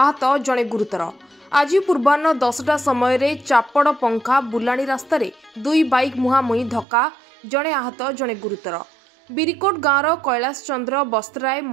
जड़े गुरुतर। आज पूर्वाह्न 10टा समय चापड़ पंखा बुलाणी रास्तार दुई बाइक मुहांमुही धक्का जड़े आहत जड़े गुरुतर। बिरिकोट गाँवर कैलाश चंद्र बस्त्राय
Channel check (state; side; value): drops out; left; at 6.9 s